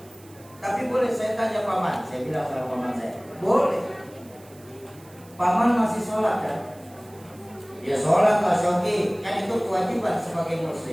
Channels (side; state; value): right; noise; hiss, 25 dB below the sound